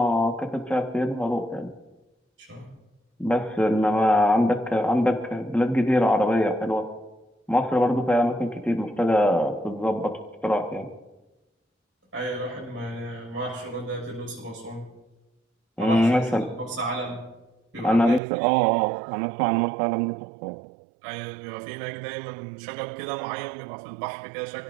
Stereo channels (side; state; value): left; drops out; at 18.2 s